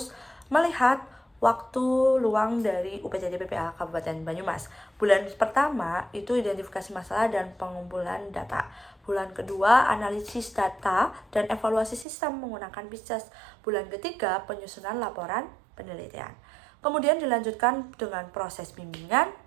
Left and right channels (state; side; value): drops out; left; at 12.1 s